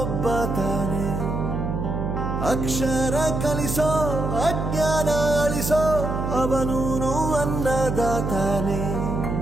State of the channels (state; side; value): noise; right; hum, 2 dB below the sound